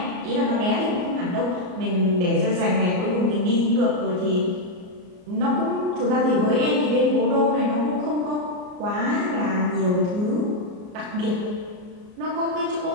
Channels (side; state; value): left; late; 34 ms